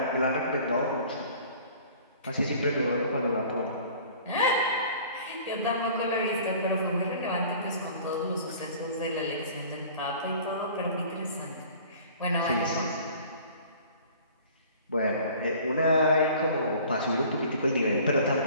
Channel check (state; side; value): inverted; both; correlation -0.48